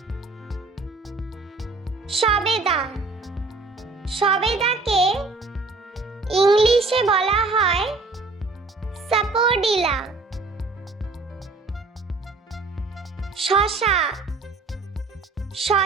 সবেদা, সবেদাকে ইংলিশে বলা হয় সাপোডিলা। শসা,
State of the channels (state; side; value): quieter; left; 3.7 dB